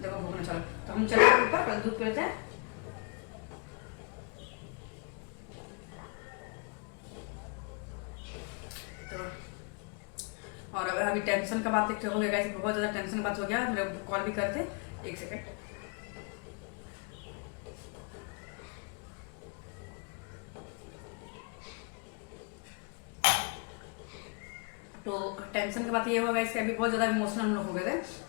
देखो भूखने चलो, तो हम चले ऊपर, पहले दूध पी लेते हैं। और अभी टेंशन का बात एक हो गया, बहुत ज़्यादा टेंशन बात हो गया। मेरे कॉल भी करते, एक सेकंड। तो टेंशन की बात ये होगा इसके, अभी बहुत ज़्यादा इमोशनल हम लोग हो गए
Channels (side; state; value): right; quieter; 34.8 dB